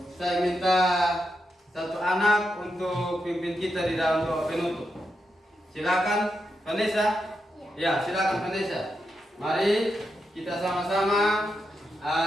saya minta satu anak untuk pimpin kita di dalam doa penutup. Silakan Vanessa. Ya, silakan Vanessa. Mari kita sama-sama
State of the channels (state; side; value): normal; both; correlation 0.85